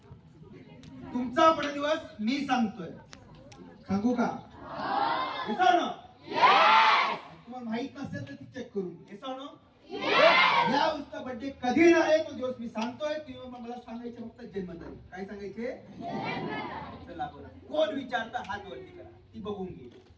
तुमचा बर्थडे दिवस मी सांगतोय. सांगू का? तुम्हाला माहित नसेल तर ती चेक करून या उसका बर्थडे कधी येणार आहे तो दिवस मी सांगतोय. तुम्ही मला सांगायचे फक्त जन्मतारीख. काय सांगायचे? चला बरं. कोण विचारता हात वरती करा. ती बघून घे.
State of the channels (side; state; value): both; identical; correlation 1.00